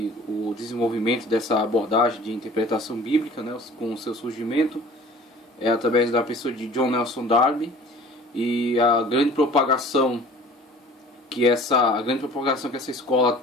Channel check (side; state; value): both; normal; correlation 0.47